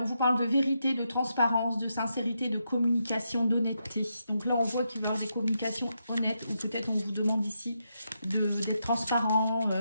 vous parle de vérité, de transparence, de sincérité, de communication, d'honnêteté. Donc là, on voit qu'il va y avoir des communications honnêtes, ou peut-être on vous demande ici d'être transparent,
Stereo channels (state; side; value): inverted; both; correlation -0.83